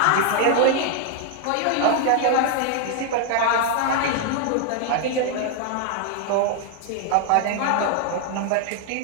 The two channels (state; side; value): different; both; correlation 0.00